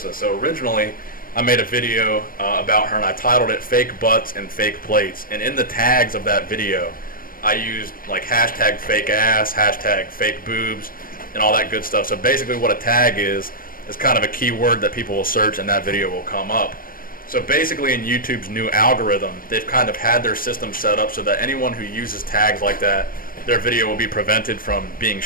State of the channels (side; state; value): right; late; 0.41 ms